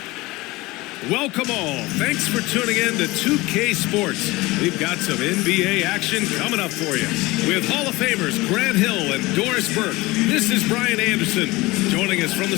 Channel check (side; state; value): right; quieter; 21.1 dB